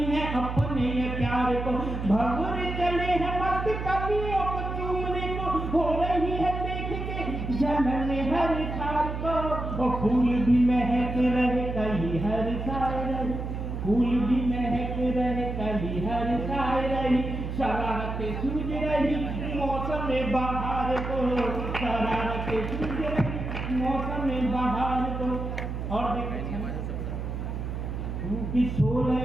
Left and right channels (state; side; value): noise; right; hum, 4 dB below the sound